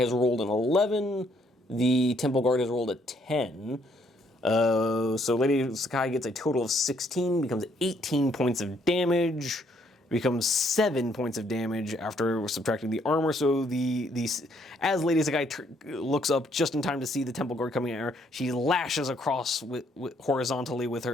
rolled an 11. The temple guard has rolled a 10. So Lady Sakai gets a total of 16, becomes 18 points of damage, becomes 7 points of damage after subtracting the armor. So as Lady Sakai looks up just in time to see the temple guard coming at her, she lashes across horizontally with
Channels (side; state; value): both; normal; correlation 0.69